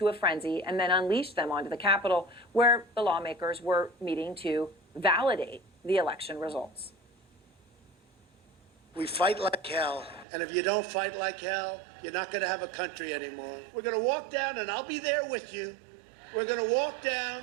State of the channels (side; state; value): left; drops out; at 10.2 s